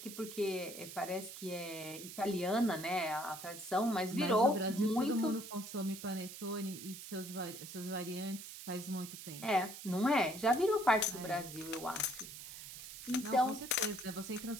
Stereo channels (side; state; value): right; noise; hiss, 11 dB below the sound